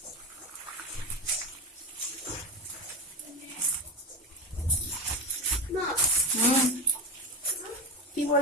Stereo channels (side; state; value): both; normal; correlation 0.19